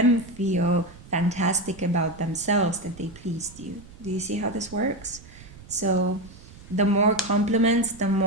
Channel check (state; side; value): noise; right; rumble, 19 dB below the sound